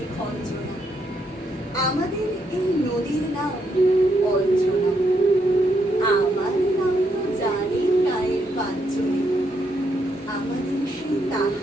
খঞ্জনা, আমাদের এই নদীর নাম অঞ্জনা, আমার নাম তো জানি গায়ের পাঁচজনে, আমাদের সেই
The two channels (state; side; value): normal; both; correlation 0.77